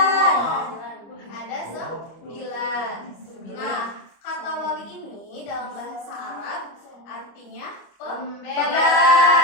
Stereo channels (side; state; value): right; late; 25 ms